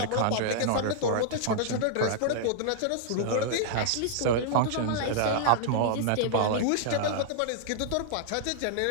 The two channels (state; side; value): different; both; correlation -0.01